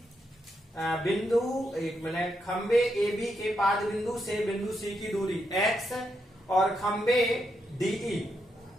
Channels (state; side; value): normal; both; correlation 0.81